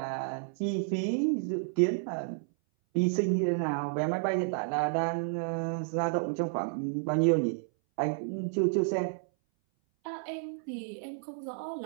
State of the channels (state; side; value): silent; left; 57 dB below the other